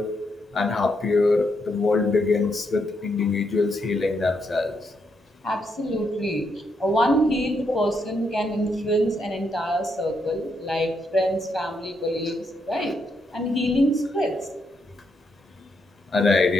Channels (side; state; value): both; normal; correlation 0.79